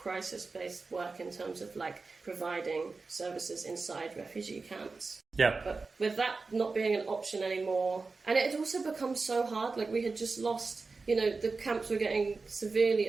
work in terms of like providing services inside refugee camps. Yeah. But with that not being an option anymore, and it had also become so hard, like we had just lost, you know, the camps were getting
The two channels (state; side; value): quieter; left; 4.1 dB